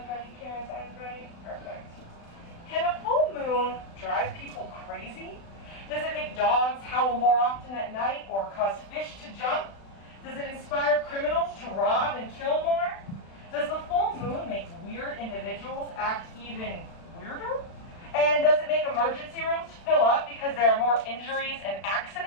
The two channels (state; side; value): late; right; 36 ms